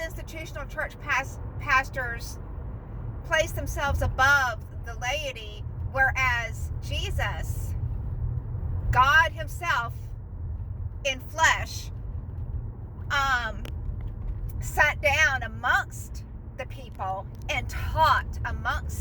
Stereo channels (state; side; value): identical; both; correlation 1.00